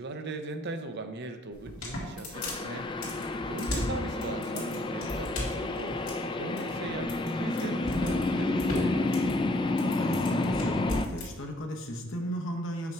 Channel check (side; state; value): both; normal; correlation 0.65